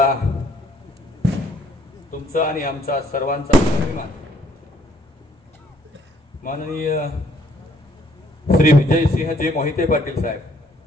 तुमचा आणि आमचा सर्वांचा अभिमान माननीय श्री विजयसिंहजी मोहिते पाटील साहेब,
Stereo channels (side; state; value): both; normal; correlation 0.64